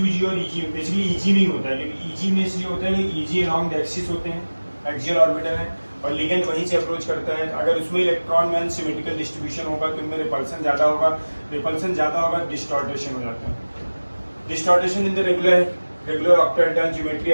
और EG, बेसिकली EG में ही होता है, क्योंकि EG में इसलिए होता है कि EG अलॉन्ग द एक्सिस होते हैं, एक्सियल ऑर्बिटल है, और लिगेंड वहीं से अप्रोच करता है। अगर उसमें इलेक्ट्रॉन में अनसिमेट्रिकल डिस्ट्रीब्यूशन होगा तो इनमें रिपल्सन ज़्यादा होगा, रिपल्सन ज़्यादा होगा, डिस्टॉर्टेशन हो जाता है। Distortion in the regular octahedral geometry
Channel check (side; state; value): both; inverted; correlation -1.00